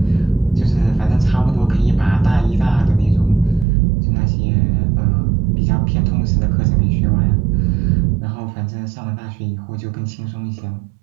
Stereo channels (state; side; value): drops out; left; at 3.7 s